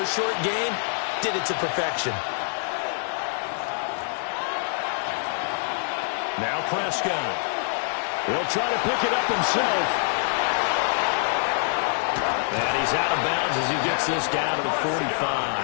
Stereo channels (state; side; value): silent; right; 61 dB below the other